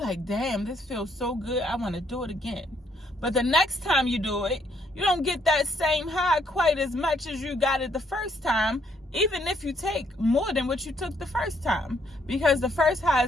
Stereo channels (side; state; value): both; normal; correlation 0.70